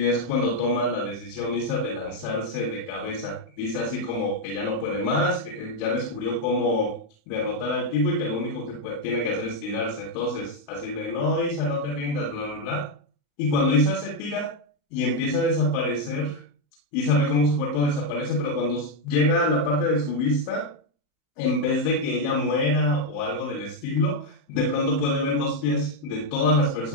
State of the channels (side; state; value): right; late; 35 ms